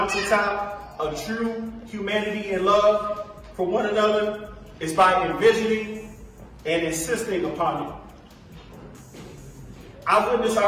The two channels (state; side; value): identical; both; correlation 1.00